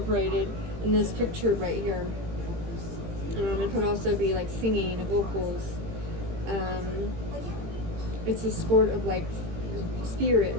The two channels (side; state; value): left; late; 18 ms